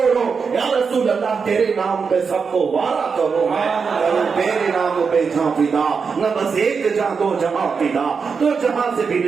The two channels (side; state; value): left; quieter; 5.5 dB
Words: یا رسول اللہ تیرے نام پہ سب کو وارا کرو، میں تیرے نام پہ جہاں فدا، نہ بس ایک جہاں دو جہاں فدا، تو جہاں سے بھی